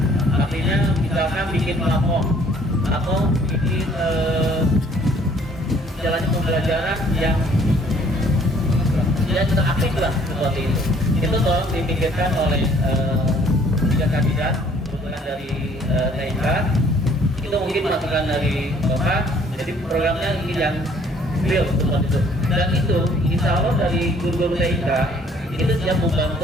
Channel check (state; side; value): normal; both; correlation 0.59